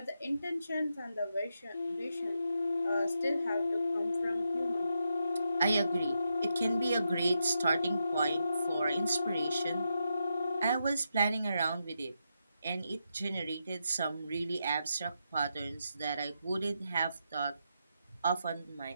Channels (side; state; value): both; inverted; correlation -0.84